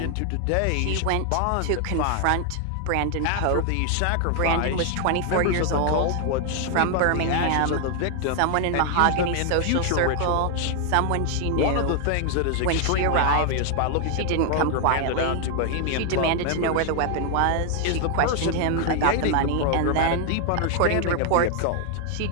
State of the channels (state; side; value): different; both; correlation 0.00